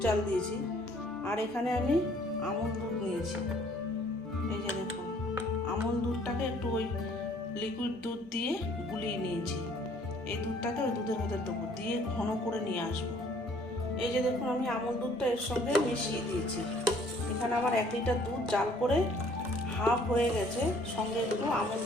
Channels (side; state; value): both; normal; correlation 0.59